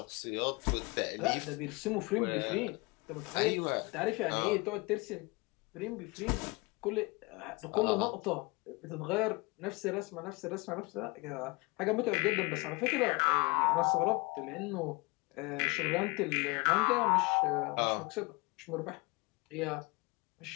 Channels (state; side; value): quieter; right; 26.3 dB